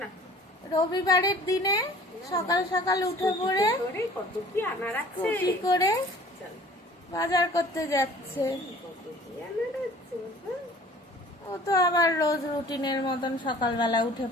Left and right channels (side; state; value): both; normal; correlation 0.49